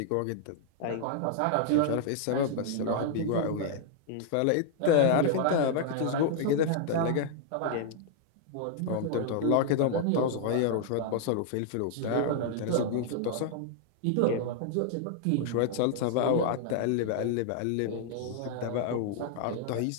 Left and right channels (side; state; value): both; different; correlation -0.01